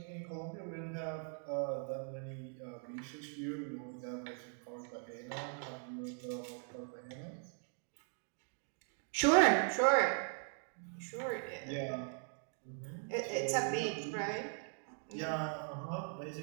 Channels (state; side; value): silent; left; 51 dB below the other